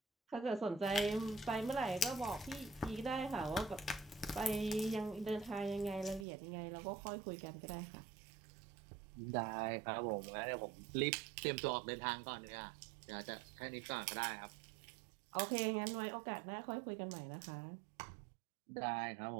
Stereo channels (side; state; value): left; drops out; at 6.2 s